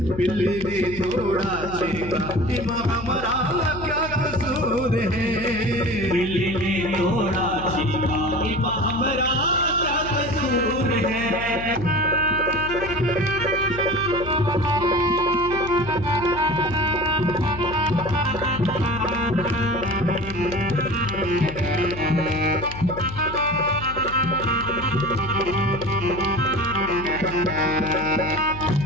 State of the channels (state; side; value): noise; left; hum, 12 dB below the sound